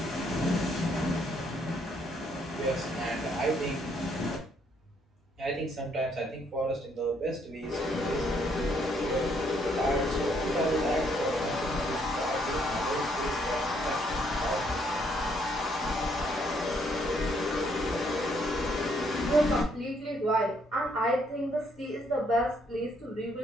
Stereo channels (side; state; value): both; normal; correlation 0.70